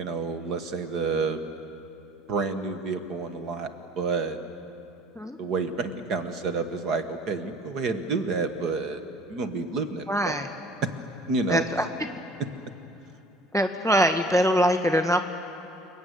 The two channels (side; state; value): both; normal; correlation 0.51